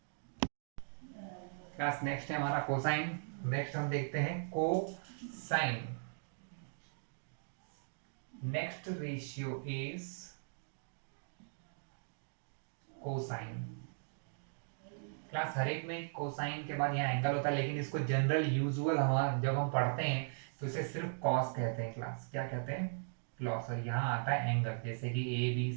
class next है हमारा कोसाइन। नेक्स्ट हम देखते हैं cosine, next ratio is cosine. Class हर एक में कोसाइन के बाद यहाँ एंगल होता है, लेकिन इसको जनरल यूजुअल हम जब हम पढ़ते हैं तो इसे सिर्फ कॉस कहते हैं। क्लास क्या कहते हैं क्लॉस, और यहाँ आता है एंगल, जैसे कि ए बी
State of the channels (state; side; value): silent; left; digital silence